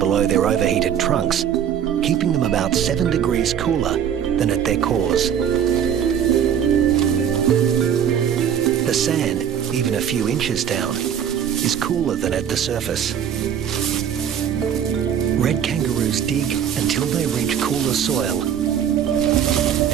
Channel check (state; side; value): quieter; left; 8.8 dB